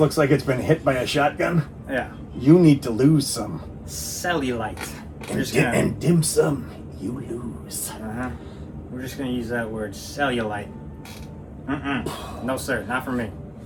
like it's been hit by a shotgun, Yeah. you need to lose some. Cellulite. And dim sum, you lose. We're just gonna use that word, cellulite. No sir, not for me.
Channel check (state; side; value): identical; both; correlation 1.00